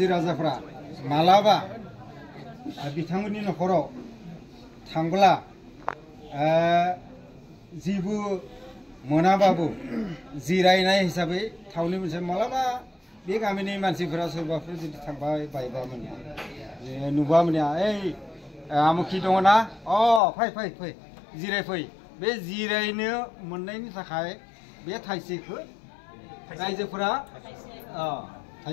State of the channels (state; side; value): drops out; right; at 20.2 s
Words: राजाफ्रा मालाबा बिथांमोननि नखराव थांब्ला जेबो मोनाबाबो जिरायनाय हिसाबै थावनि मोनसे मालाबा बे गामिनि मानसिफोरा सोरबाफोर जुदि थांबाय बायबा मोने नुबा मोने ओइ आमुखि दङ ना अ फै फै फै जिराय फै बे जिरायनो मोननायनि थाखाय बे थाइसेखौ रायजोफोरा